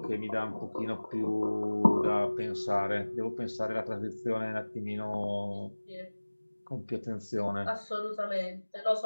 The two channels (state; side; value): inverted; both; correlation -1.00